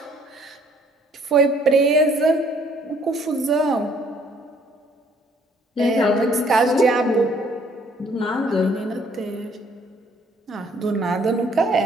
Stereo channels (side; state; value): both; normal; correlation 0.62